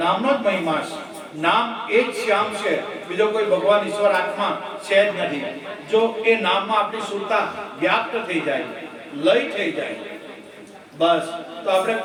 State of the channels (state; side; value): identical; both; correlation 1.00